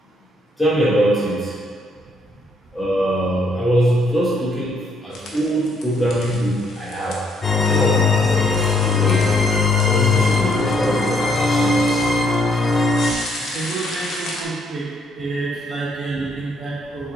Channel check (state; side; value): normal; both; correlation 0.70